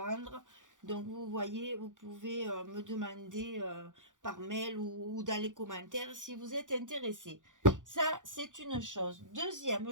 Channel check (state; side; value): late; left; 0.87 ms